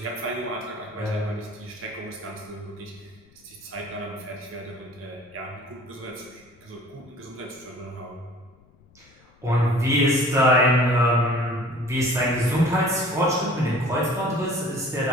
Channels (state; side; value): noise; left; rumble, 29 dB below the sound